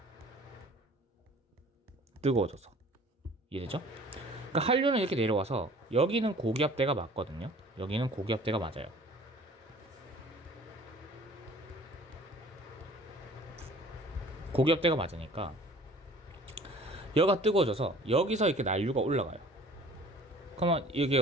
뜨거워져서. 이해되죠? 그러니까 한류는 이렇게 내려와서 여기는 고기압대가 맞거든요. 여기는 고기압대가 맞아요. 고기압대가 맞으니까 여기가 뜨거워져서 여기서 이렇게 난류가 올라가요. 그러면 이게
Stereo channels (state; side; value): normal; both; correlation 0.49